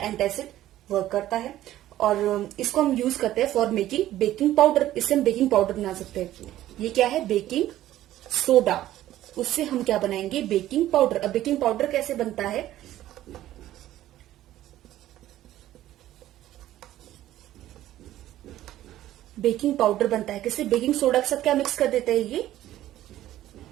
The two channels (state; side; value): quieter; left; 13.7 dB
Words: वर्क करता है। और इसको हम यूज करते हैं फॉर मेकिंग बेकिंग पाउडर। इससे हम बेकिंग पाउडर बना सकते हैं। ये क्या है, बेकिंग सोडा, उससे हम क्या बनाएंगे, बेकिंग पाउडर। अब बेकिंग पाउडर कैसे बनता है, बेकिंग पाउडर बनता है किससे, बेकिंग सोडा के साथ क्या मिक्स कर देते हैं, ये